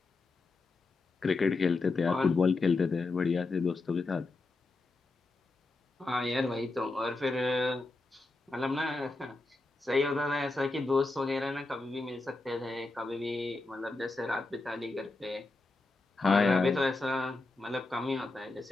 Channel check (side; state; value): right; quieter; 3.4 dB